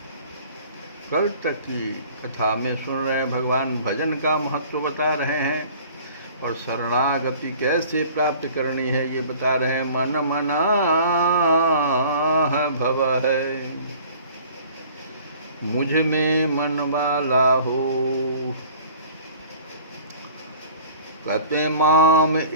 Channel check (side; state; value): both; inverted; correlation -0.48